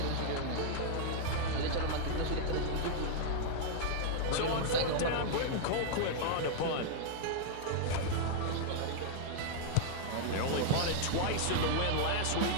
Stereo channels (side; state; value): both; different; correlation -0.01